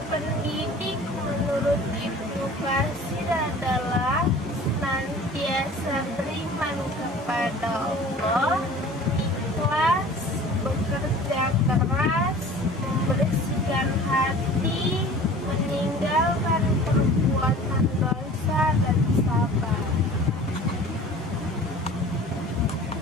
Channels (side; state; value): both; normal; correlation 0.43